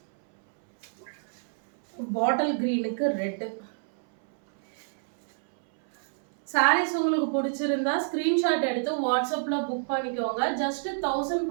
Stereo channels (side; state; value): left; silent; 60 dB below the other